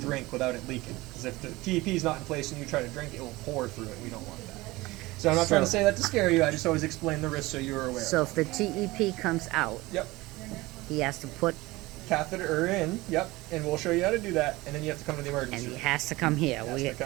without it leaking. Because if the TEP is not in place and you try to drink, it will pour through it. We don't want that. So I'm not trying to say that to scare you, I just always explain the risks so you're aware. So if the TEP comes out, Yep. he has to put, Catheter in, yep, and we'll show you how to do that, and then you have to come to the and emergency he room. has to come here. It has to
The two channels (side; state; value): left; quieter; 20.3 dB